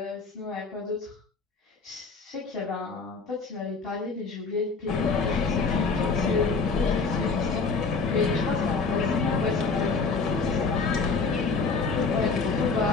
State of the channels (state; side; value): quieter; right; 4.5 dB